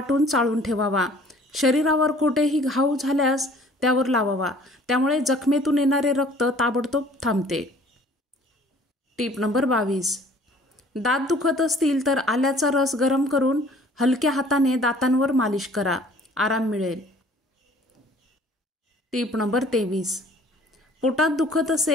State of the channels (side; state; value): both; normal; correlation 0.53